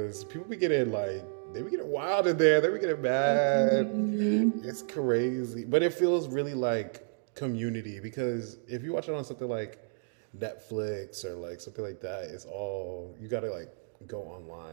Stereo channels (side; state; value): left; silent; digital silence